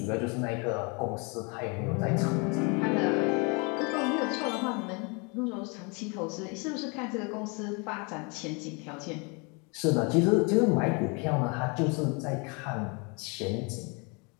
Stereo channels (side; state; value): right; quieter; 31.9 dB